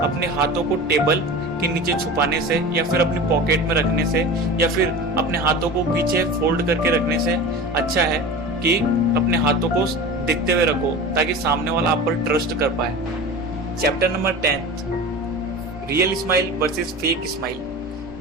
अपने हाथों को टेबल के नीचे छुपाने से या फिर अपनी पॉकेट में रखने से या फिर अपने हाथों को पीछे फोल्ड करके रखने से अच्छा है कि अपने हाथों को दिखते हुए रखो ताकि सामने वाला आप पर ट्रस्ट कर पाए। Chapter number 10, real smile versus fake smile.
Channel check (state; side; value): normal; both; correlation 0.33